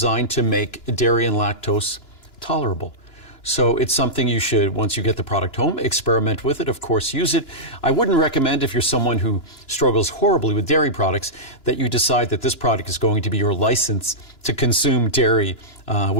to make dairy and lactose tolerable. So it's something you should, once you get the product home, experiment with it, of course, use it. I wouldn't recommend, if you're someone who struggles horribly with dairy products, that you decide that this product is going to be your license to consume dairy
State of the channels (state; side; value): late; right; 2.9 ms